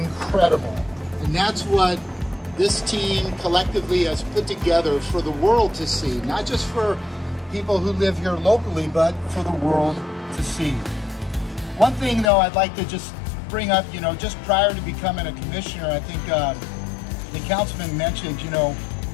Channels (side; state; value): right; drops out; at 12.3 s